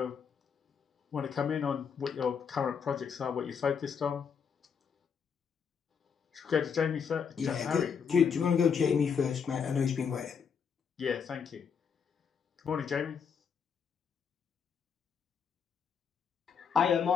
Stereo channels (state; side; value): quieter; right; 6.7 dB